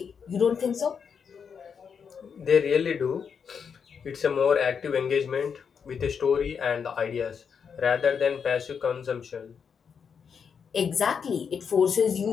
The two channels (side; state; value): right; quieter; 6.6 dB